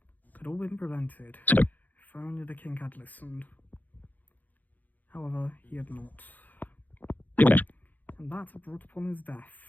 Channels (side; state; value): right; late; 0.082 ms